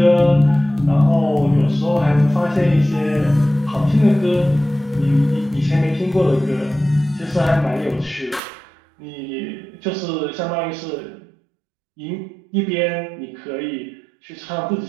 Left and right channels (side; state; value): left; drops out; at 8.4 s